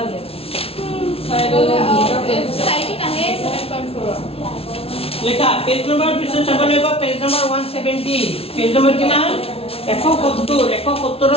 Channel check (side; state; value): right; late; 0.28 ms